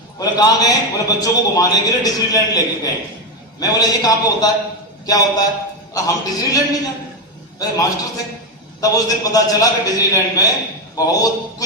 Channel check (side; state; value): both; normal; correlation 0.10